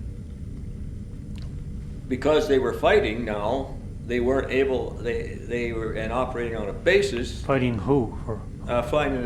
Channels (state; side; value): identical; both; correlation 1.00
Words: because they were fighting now, they weren't able, they were and operating on a basis, Fighting who? For fighting